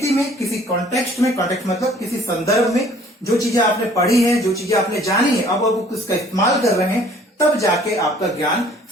में, किसी कॉन्टेक्स्ट में, कॉन्टेक्स्ट मतलब किसी संदर्भ में, जो चीजें आपने पढ़ी है, जो चीजें आपने जानी है, अब उसका इस्तेमाल कर रहे हैं, तब जाके आपका ज्ञान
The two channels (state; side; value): normal; both; correlation 0.55